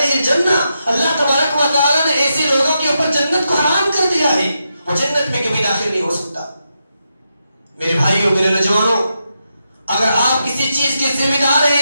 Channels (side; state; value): both; inverted; correlation -0.85